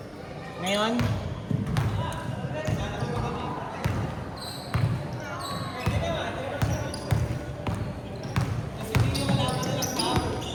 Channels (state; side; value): identical; both; correlation 1.00